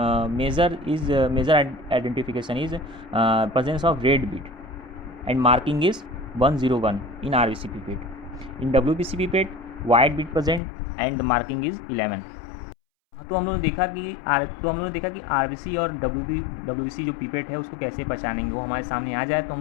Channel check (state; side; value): drops out; right; at 10.6 s